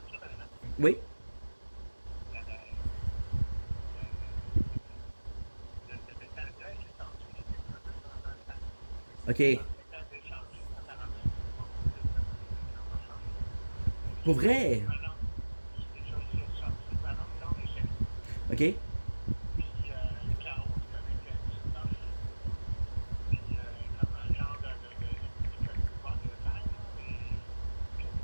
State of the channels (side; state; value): both; inverted; correlation -1.00